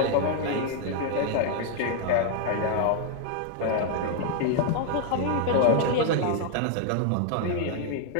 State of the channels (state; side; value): different; both; correlation 0.00